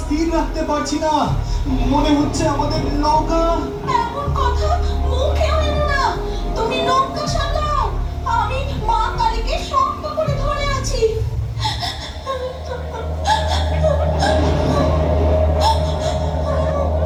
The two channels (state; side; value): identical; both; correlation 1.00